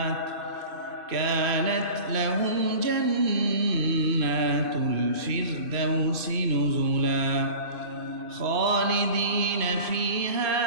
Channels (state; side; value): late; left; 2.6 ms